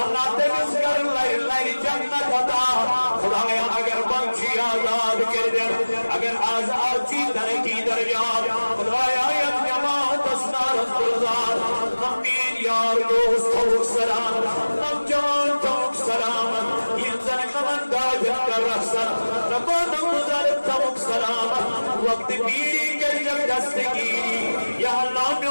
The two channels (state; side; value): inverted; both; correlation -1.00